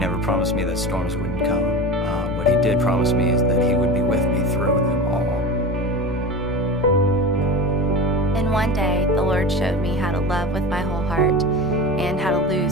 promised me that storms wouldn't come. What he did promise me is that he would be with me through them all. And one day, the Lord showed me how to love with my whole heart and how to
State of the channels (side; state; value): both; normal; correlation 0.29